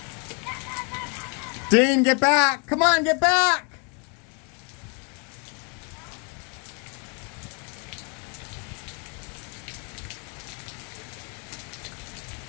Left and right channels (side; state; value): right; quieter; 36.6 dB